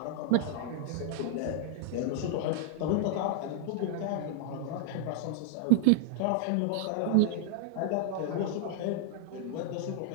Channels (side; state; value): both; different; correlation -0.01